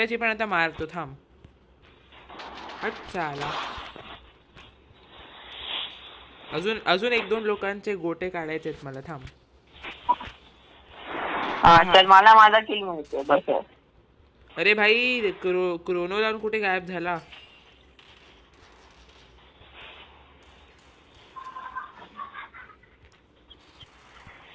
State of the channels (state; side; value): identical; both; correlation 1.00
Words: पण आता मारतो. थांब. हट चाला. अजून 1-2 लोकांचे गोटे काढायचे मला. थांब. चल मला माझा किल मिळतो बस. अरे भाई क्रोनो लावून कुठे गायब झाला?